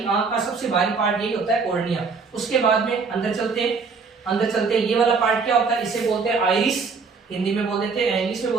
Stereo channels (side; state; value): left; quieter; 4.9 dB